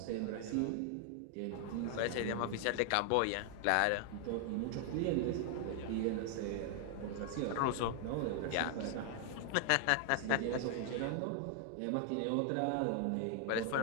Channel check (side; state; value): both; different; correlation 0.00